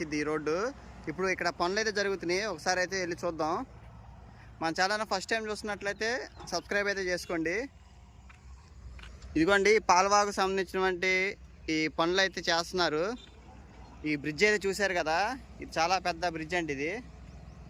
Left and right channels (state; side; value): identical; both; correlation 1.00